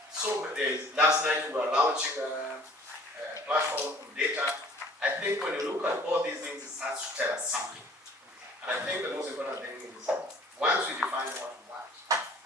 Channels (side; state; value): both; normal; correlation 0.52